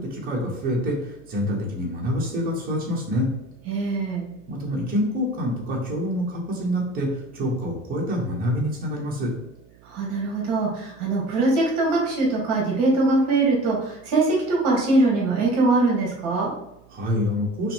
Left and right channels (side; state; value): right; noise; hum, 27 dB below the sound